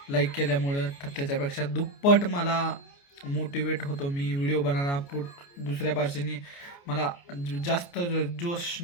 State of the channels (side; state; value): right; late; 29 ms